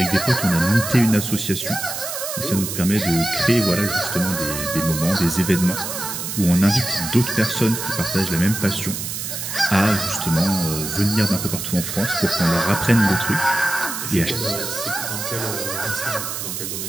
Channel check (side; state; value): right; noise; hiss, 5 dB below the sound